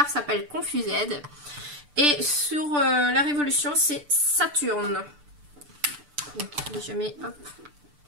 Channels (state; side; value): late; left; 6.8 ms